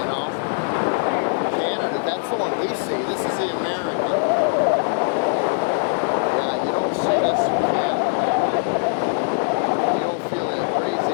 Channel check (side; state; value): right; silent; digital silence